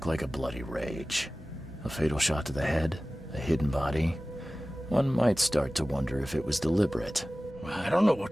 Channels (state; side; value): normal; both; correlation 0.97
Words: like a bloody rage. A fatal shot to the head, a hidden body. One might start to wonder if it was deliberate. I don't know